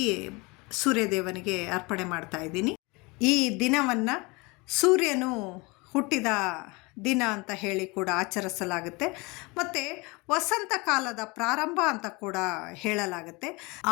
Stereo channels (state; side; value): quieter; right; 26.1 dB